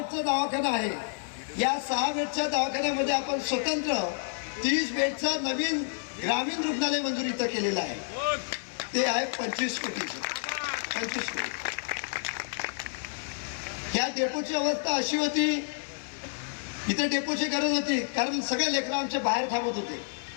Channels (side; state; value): right; silent; digital silence